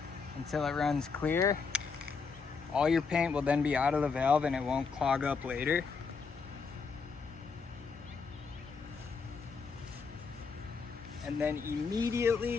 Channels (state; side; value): quieter; right; 5.1 dB